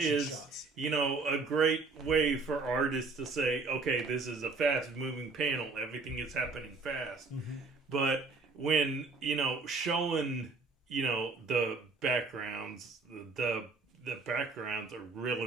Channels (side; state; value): left; quieter; 4.1 dB